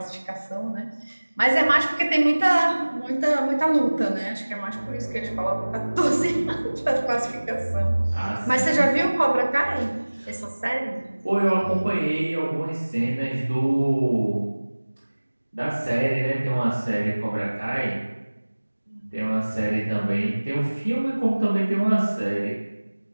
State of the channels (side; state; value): both; inverted; correlation -1.00